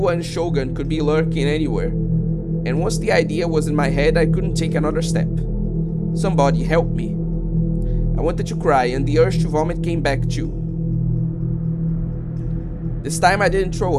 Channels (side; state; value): both; identical; correlation 1.00